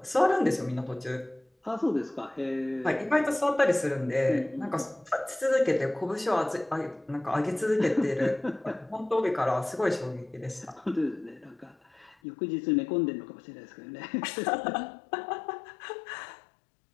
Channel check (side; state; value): right; drops out; at 12.2 s